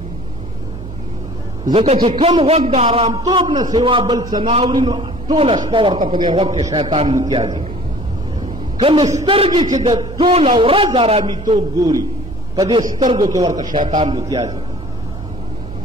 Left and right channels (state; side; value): normal; both; correlation 0.49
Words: ځکه چې کم غوږ د آرامتوب نه سوا بل څه نه اوري نو ټوله شپه ورته په دې غوږ کې شیطان متیازې کوي کمې سترګې چې د ټوله ورځ آرامیتوب ګوري په دې سترګو کې ورته شیطان متیازې کوي